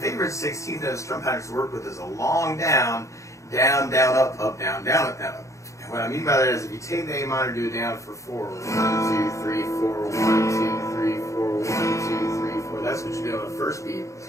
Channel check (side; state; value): right; late; 0.15 ms